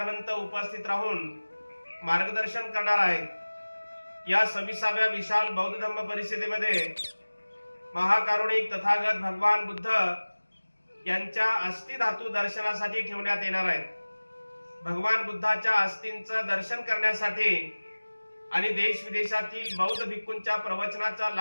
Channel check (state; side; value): inverted; both; correlation -1.00